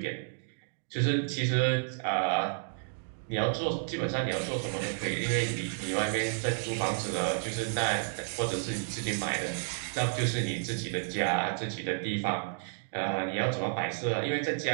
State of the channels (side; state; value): left; silent; digital silence